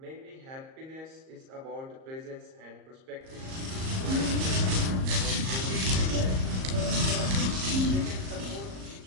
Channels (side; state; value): left; late; 38 ms